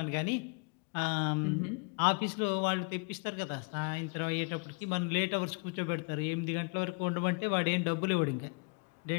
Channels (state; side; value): quieter; right; 34.3 dB